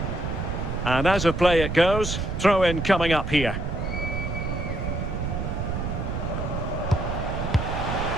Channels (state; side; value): noise; right; rumble, 3 dB below the sound